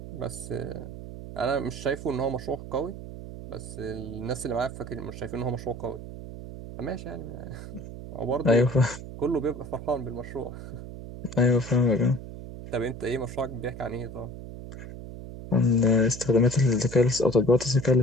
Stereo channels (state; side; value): noise; right; hum, 11 dB below the sound